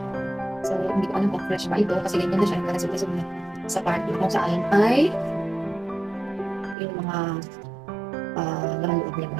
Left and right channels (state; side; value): drops out; left; at 6.8 s